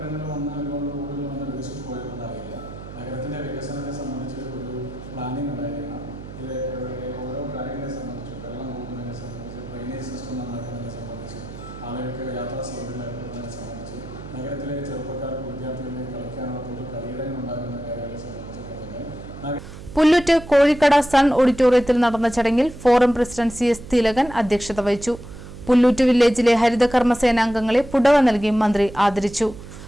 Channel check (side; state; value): right; noise; hum, 14 dB below the sound